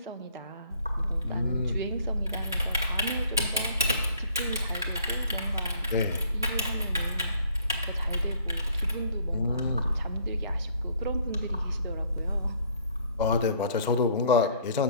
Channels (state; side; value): inverted; both; correlation -0.58